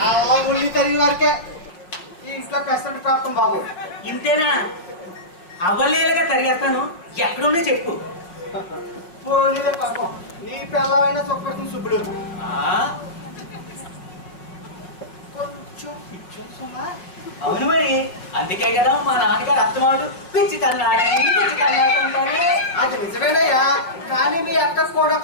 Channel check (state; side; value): late; right; 5.6 ms